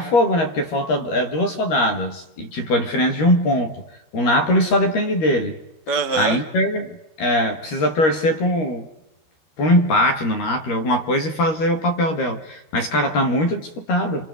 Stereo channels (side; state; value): right; late; 13 ms